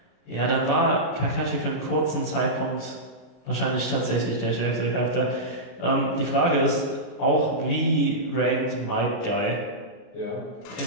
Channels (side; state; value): right; late; 32 ms